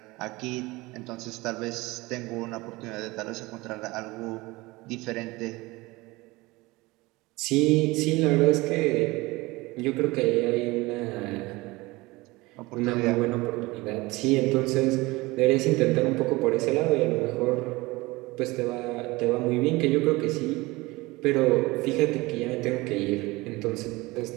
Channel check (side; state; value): left; quieter; 21.8 dB